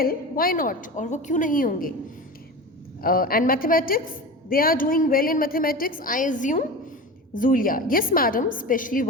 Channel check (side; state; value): both; normal; correlation 0.29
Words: why not, और वो क्यों नहीं होंगे. And mathematics, they are doing well in mathematics, I assume. Zulia, yes madam, especially